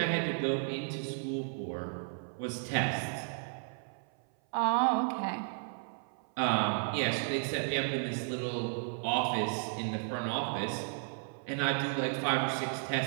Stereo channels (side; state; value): left; silent; 55 dB below the other